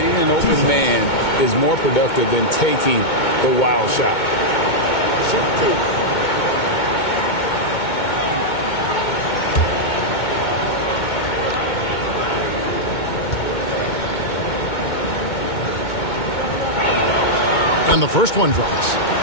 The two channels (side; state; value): right; late; 2.2 ms